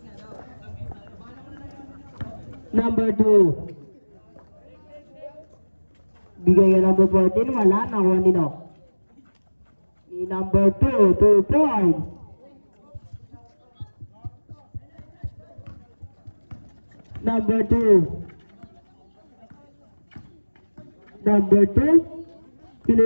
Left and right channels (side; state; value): both; inverted; correlation -1.00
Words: Number 2. Bigay ka number 14, wala, nakuha ni Nock. Ni number 2, 2 points. Number 2. Number 2.